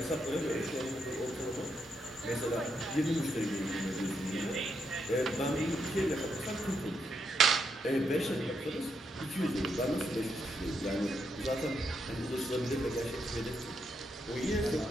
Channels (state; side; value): normal; both; correlation 0.80